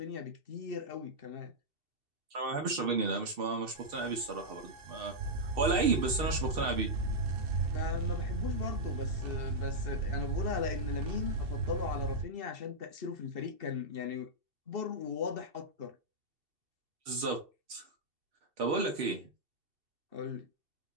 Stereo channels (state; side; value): late; left; 2.7 ms